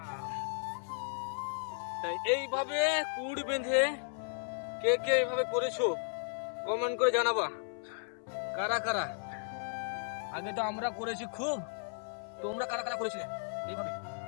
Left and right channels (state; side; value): silent; right; 55 dB below the other